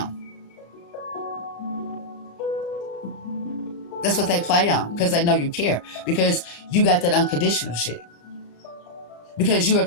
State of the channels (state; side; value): late; right; 35 ms